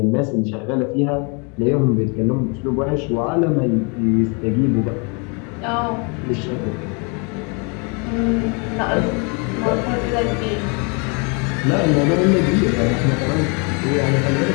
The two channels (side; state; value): right; quieter; 34.1 dB